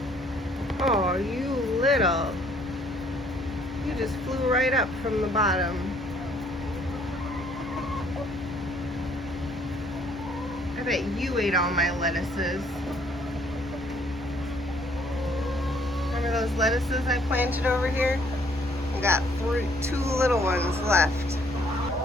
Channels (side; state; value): both; normal; correlation 0.63